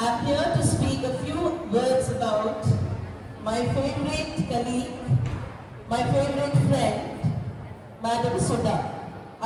I'm here to speak a few words about my favorite colleague, my favorite friend, Madam Sudha.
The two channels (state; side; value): identical; both; correlation 1.00